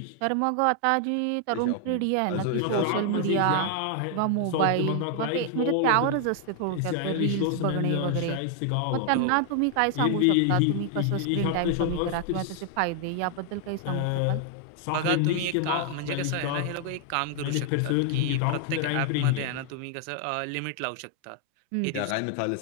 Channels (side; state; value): both; different; correlation 0.00